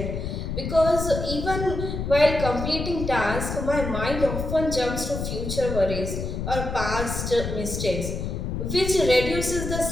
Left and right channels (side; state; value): left; noise; rumble, 4 dB below the sound